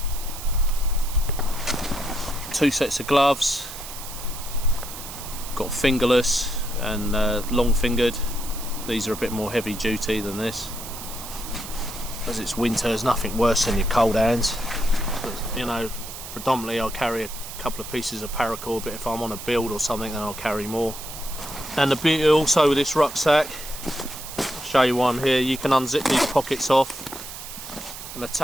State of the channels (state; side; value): noise; right; hiss, 11 dB below the sound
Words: 2 sets of gloves, got fingerless and long fingered. These are a bit more heavy duty than this. As it's winter, there's nothing worse than your cold hands. But, you know, predominantly I'll carry a couple of pieces of paracord, but if I'm on a build or something, then I'll carry more. And the beauty also with this rucksack, I'll show you one here. You can unzip these pockets off and